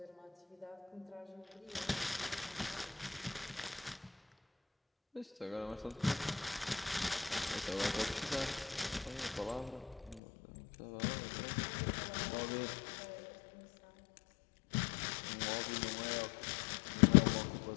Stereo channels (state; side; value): drops out; right; at 10.2 s